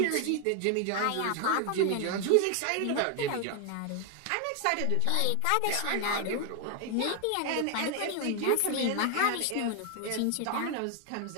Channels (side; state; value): both; different; correlation 0.00